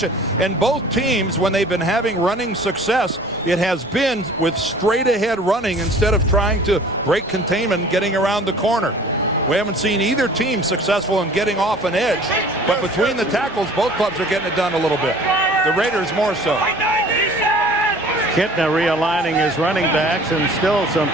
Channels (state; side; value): normal; both; correlation 0.48